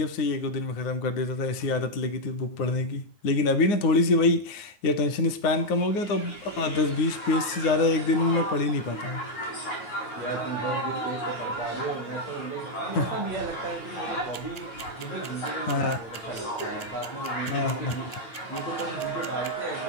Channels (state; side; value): late; right; 9.7 ms